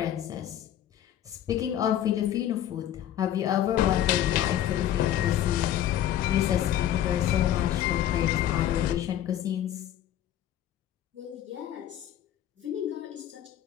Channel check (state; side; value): quieter; right; 11.6 dB